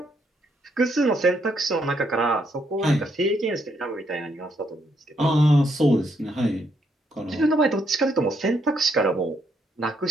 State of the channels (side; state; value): both; normal; correlation 0.74